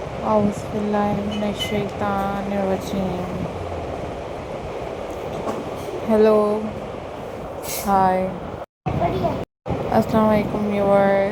Auzubillahiminash-shaytanir-rajim. Hello, hi, Assalamu alaikum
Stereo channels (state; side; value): identical; both; correlation 1.00